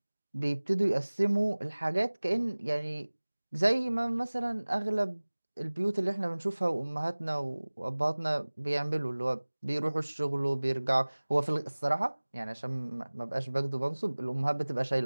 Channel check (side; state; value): both; inverted; correlation -1.00